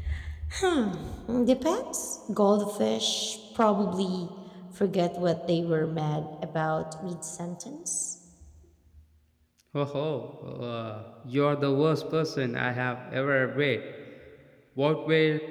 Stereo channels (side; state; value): both; identical; correlation 1.00